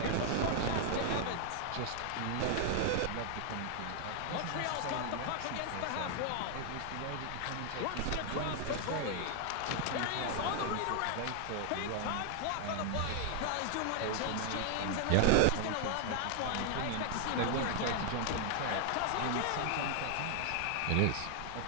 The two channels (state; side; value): different; both; correlation 0.00